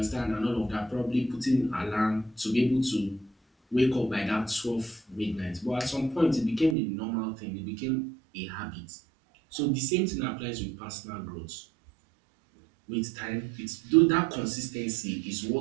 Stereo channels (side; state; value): left; drops out; at 6.8 s